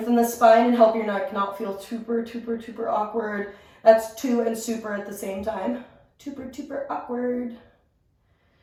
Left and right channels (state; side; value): identical; both; correlation 1.00